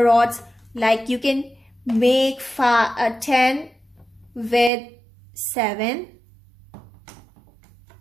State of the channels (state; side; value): drops out; left; at 4.7 s